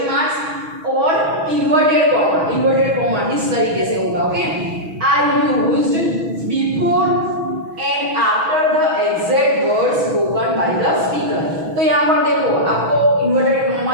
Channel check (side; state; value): left; late; 6.2 ms